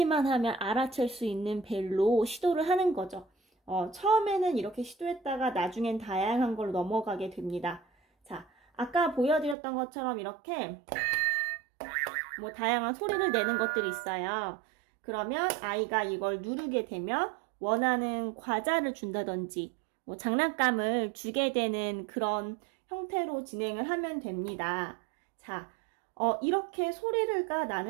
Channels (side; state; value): left; drops out; at 9.6 s